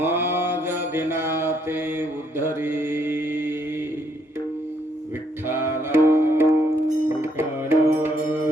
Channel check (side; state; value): both; normal; correlation 0.71